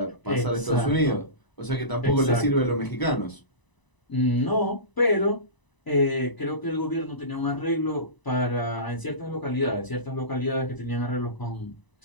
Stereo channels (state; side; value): late; right; 1.0 ms